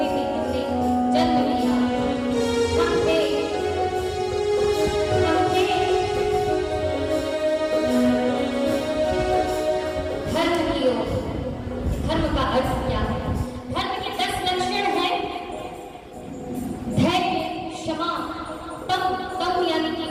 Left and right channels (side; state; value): both; identical; correlation 1.00